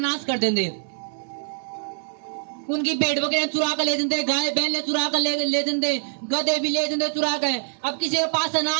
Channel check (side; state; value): left; silent; 61 dB below the other